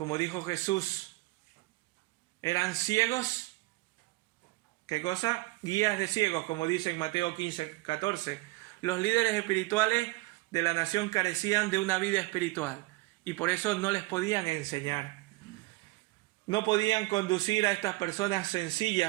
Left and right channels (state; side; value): quieter; left; 21.3 dB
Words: dijo Jesús, eran ciegos. ¿Qué cosa? Guías de ciegos, como dice en Mateo 15, 14. Los líderes espirituales de la nación carecían de una vida espiritual y por eso no les podían enseñar. No podían conducir a estas personas